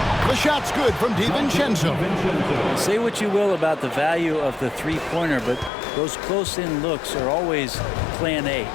The shot's good from DiVincenzo. Say what you will about the value of the three-pointer, but those close-in looks are always plan A.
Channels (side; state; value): right; drops out; at 5.7 s